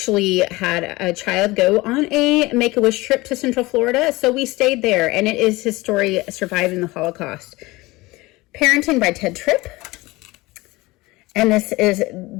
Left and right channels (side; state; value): right; quieter; 21.2 dB